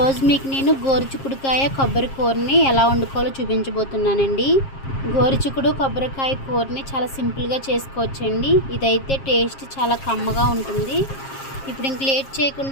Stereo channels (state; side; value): late; right; 7.4 ms